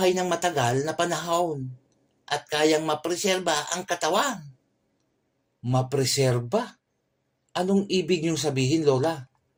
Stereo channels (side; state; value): both; identical; correlation 1.00